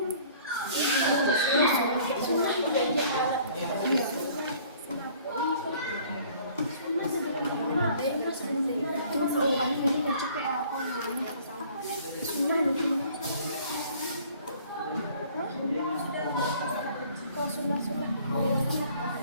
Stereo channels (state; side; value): inverted; both; correlation -0.54